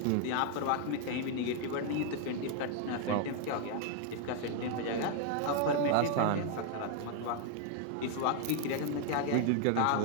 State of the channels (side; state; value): both; different; correlation 0.00